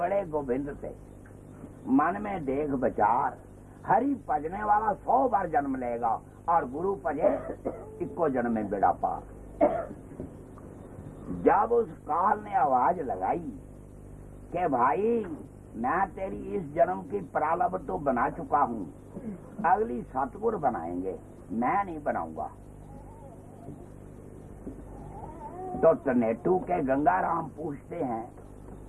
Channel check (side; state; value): both; identical; correlation 1.00